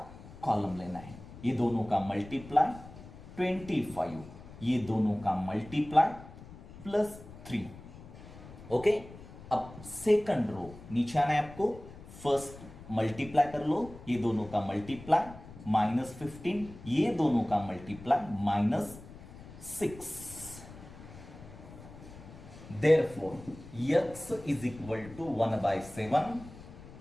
कॉलम लेना है, ये दोनों का मल्टीप्लाई 25, ये दोनों का मल्टीप्लाई +3, ओके। अब सेकंड रो नीचे आना है आपको, फर्स्ट मल्टीप्लाई कर लो, ये दोनों का मल्टीप्लाई -15, ये दोनों का multiply -6, therefore x is equal to 1/7,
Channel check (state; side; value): noise; left; rumble, 16 dB below the sound